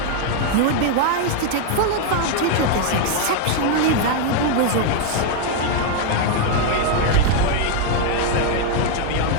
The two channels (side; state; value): both; different; correlation 0.00